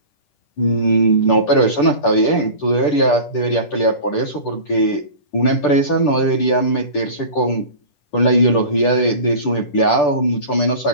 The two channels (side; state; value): right; late; 10 ms